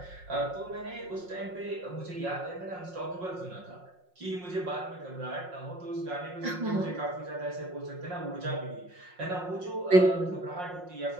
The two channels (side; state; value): left; late; 5.5 ms